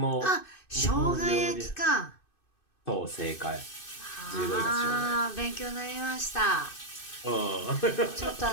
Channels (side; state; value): right; late; 2.6 ms